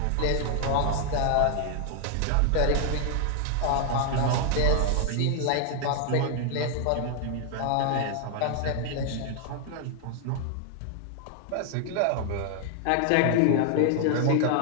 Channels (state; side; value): different; both; correlation 0.00